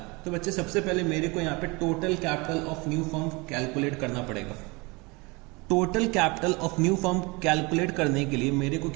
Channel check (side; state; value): left; quieter; 26.5 dB